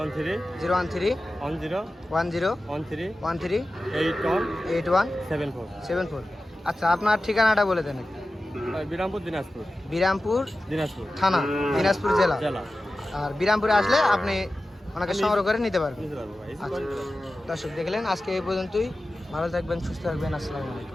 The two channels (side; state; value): both; normal; correlation 0.95